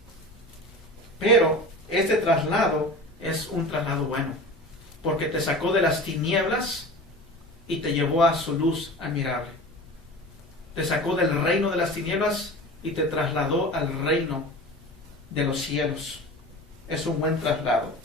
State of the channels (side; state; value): both; normal; correlation 0.35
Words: Pero este traslado es un traslado bueno, porque te sacó de las tinieblas y te llevó a su luz admirable. Te sacó del reino de las tinieblas y te trasladó al reino de los cielos. Es un buen traslado.